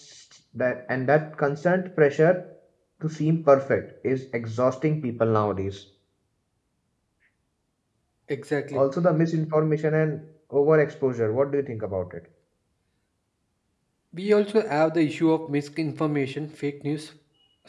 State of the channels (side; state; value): both; identical; correlation 1.00